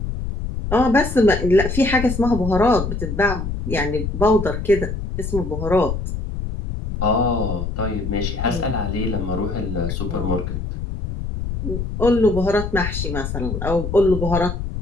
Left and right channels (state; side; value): noise; left; rumble, 4 dB below the sound